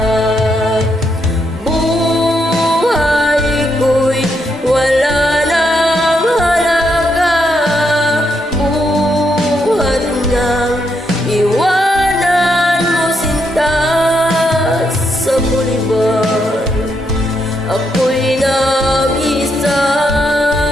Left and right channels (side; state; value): both; normal; correlation 0.79